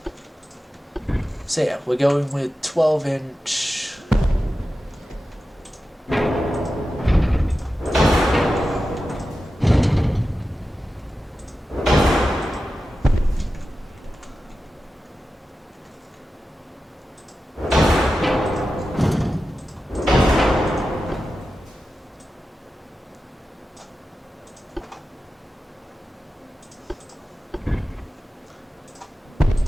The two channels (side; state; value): both; normal; correlation 0.92